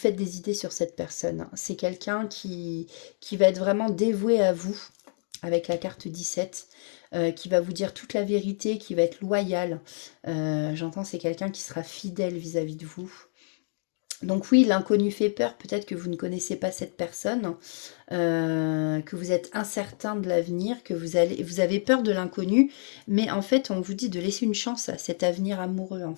des idées sur cette personne. C'est quelqu'un qui va être vraiment dévoué à vous, avec la carte 17, qui va vous dire toute la vérité, qui va être loyal. J'entends, c'est quelqu'un qui sera fidèle vis-à-vis de vous. Donc oui, l'inconnu fait peur, peut-être que vous ne connaissez pas cette personne, que vous êtes incertain de l'avenir, que vous avez peur de l'inconnu, mais en fait, on vous dit de laisser une chance à cet avenir amoureux, en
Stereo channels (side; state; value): right; silent; digital silence